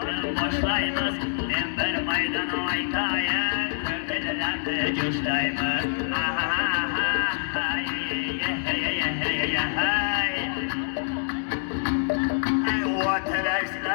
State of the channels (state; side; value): silent; right; 57 dB below the other